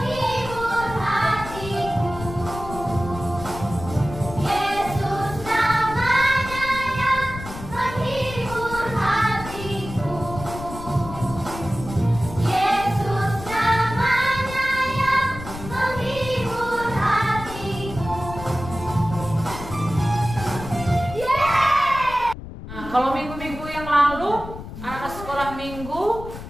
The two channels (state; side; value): noise; left; rumble, 11 dB below the sound